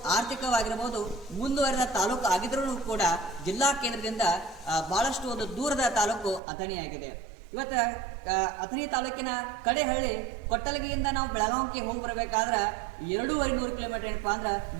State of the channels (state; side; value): drops out; left; at 6.4 s